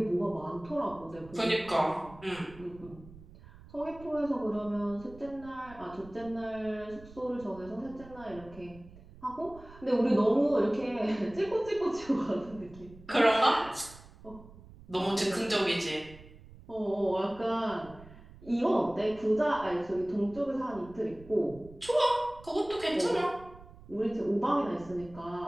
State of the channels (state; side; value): noise; right; rumble, 20 dB below the sound